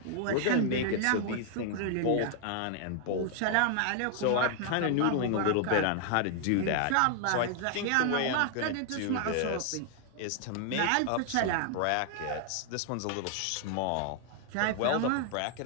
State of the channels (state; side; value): different; both; correlation 0.00